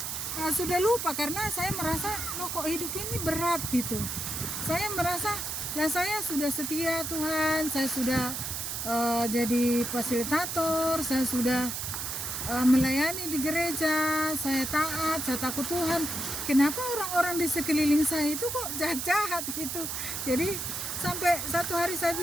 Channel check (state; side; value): noise; right; hiss, 4 dB below the sound